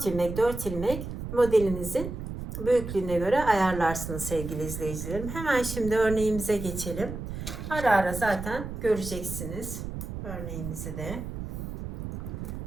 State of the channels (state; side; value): noise; right; rumble, 7 dB below the sound